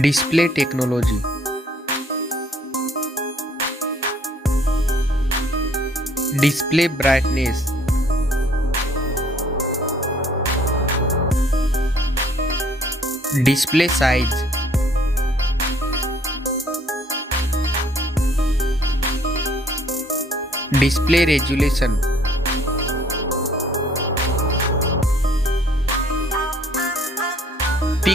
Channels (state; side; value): normal; both; correlation 0.60